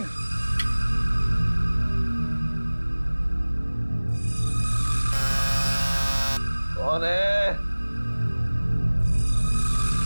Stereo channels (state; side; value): inverted; both; correlation -1.00